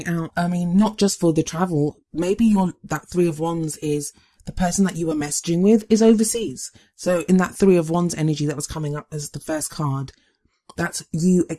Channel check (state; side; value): identical; both; correlation 1.00